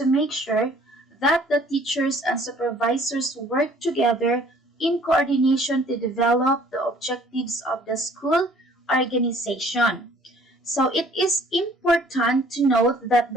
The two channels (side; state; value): both; normal; correlation 0.56